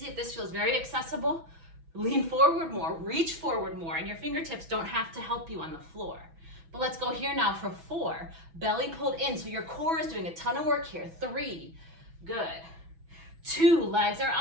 if this feels very accessible, lean forward more, reach forward more, and your fingertips don't have to help you on the floor. But let's go here now for 4. Belly pulled in, so your core is doing a ton of work here. 3, good. 2, legs are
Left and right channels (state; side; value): late; left; 6.1 ms